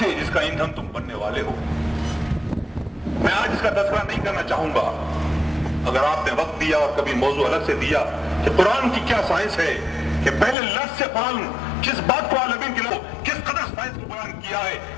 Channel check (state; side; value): drops out; right; at 10.6 s